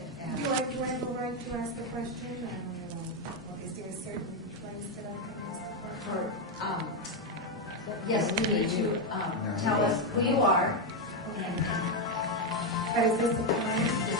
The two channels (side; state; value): both; normal; correlation 0.04